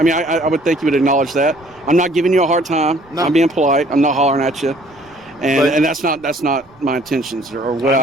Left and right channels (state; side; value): noise; right; rumble, 29 dB below the sound